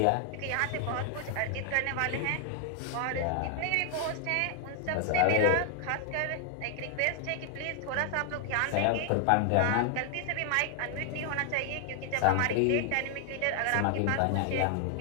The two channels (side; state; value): both; different; correlation 0.00